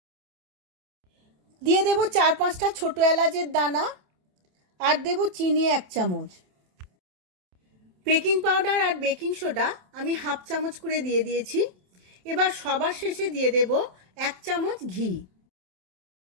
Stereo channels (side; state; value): left; late; 27 ms